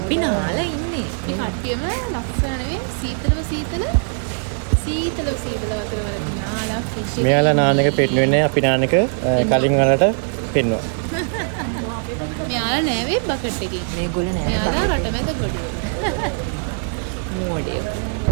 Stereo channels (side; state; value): left; silent; 65 dB below the other